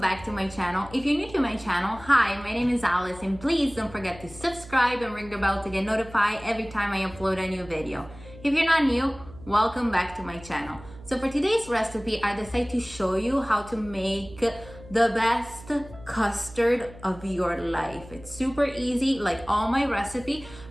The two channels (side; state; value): right; noise; hum, 19 dB below the sound